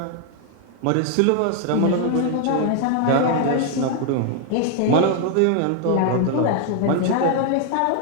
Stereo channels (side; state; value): both; different; correlation 0.00